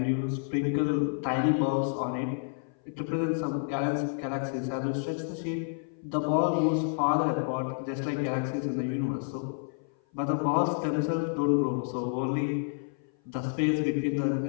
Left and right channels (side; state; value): right; silent; 56 dB below the other